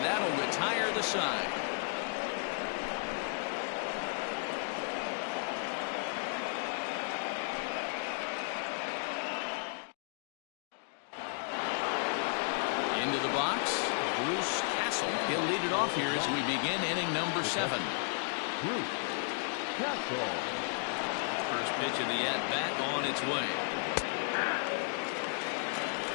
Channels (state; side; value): silent; right; 55 dB below the other